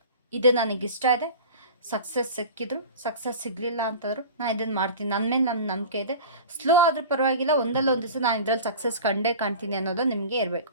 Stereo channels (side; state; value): both; inverted; correlation -0.36